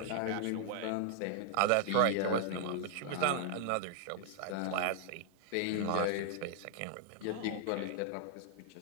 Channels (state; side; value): different; both; correlation 0.00